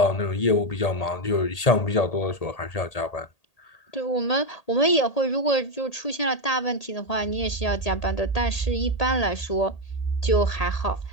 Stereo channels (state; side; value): late; right; 1.8 ms